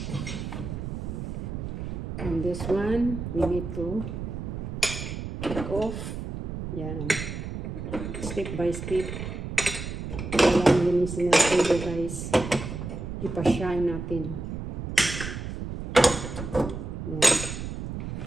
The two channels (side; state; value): right; noise; rumble, 6 dB below the sound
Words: And this one, we need to take off. Yan. Step by step. Kailangan linisin natin ito guys. Ipa-shine natin. Yan.